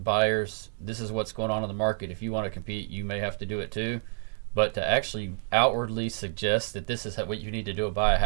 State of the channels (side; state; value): left; silent; digital silence